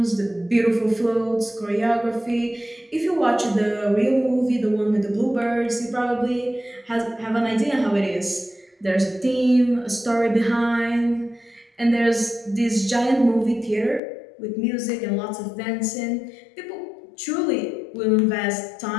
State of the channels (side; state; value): right; drops out; at 14.0 s